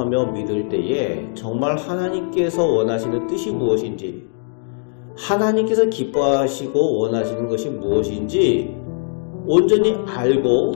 믿을 때에 정말 하나님께서 원하시는 뜻이 무엇인지, 하나님께서 기뻐하시고 원하시는 것이 무엇인지 온전히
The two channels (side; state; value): right; silent; digital silence